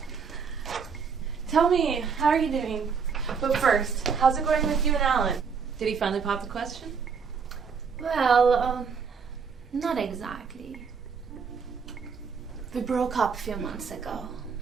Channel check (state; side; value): quieter; left; 5.9 dB